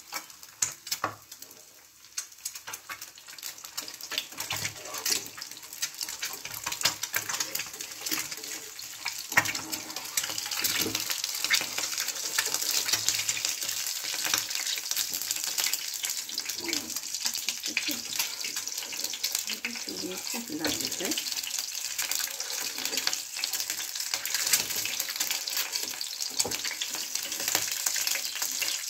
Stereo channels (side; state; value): both; identical; correlation 1.00